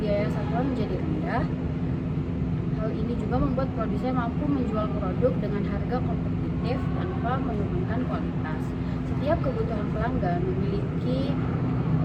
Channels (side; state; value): both; identical; correlation 1.00